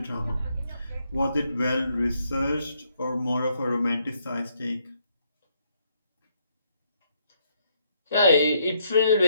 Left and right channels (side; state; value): both; inverted; correlation -0.73